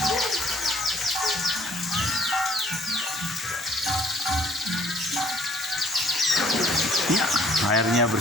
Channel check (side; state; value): both; normal; correlation 0.59